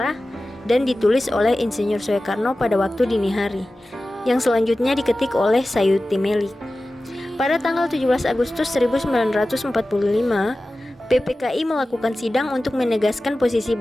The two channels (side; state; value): both; normal; correlation 0.95